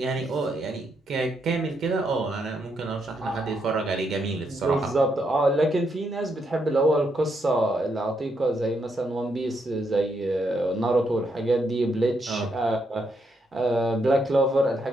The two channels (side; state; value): both; normal; correlation 0.78